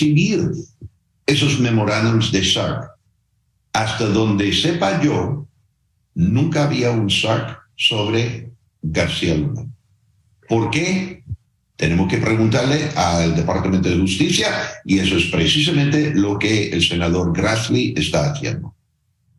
esos memorándums de SARC. Hasta donde sepa yo, nunca había un SARC sobre García Luna. ¿Por qué? Tenemos que preguntarle al Departamento de Justicia, y eso es precisamente lo que el senador Grassley está haciendo.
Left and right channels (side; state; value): both; identical; correlation 1.00